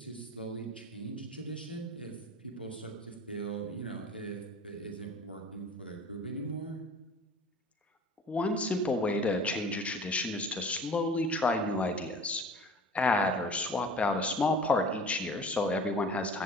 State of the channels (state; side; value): normal; both; correlation 0.43